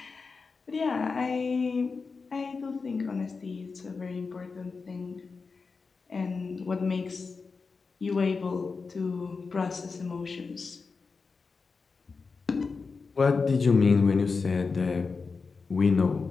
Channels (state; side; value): quieter; right; 4.6 dB